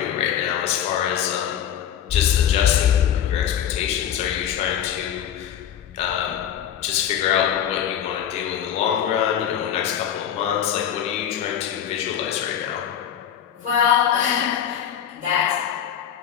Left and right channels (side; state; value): right; quieter; 9.6 dB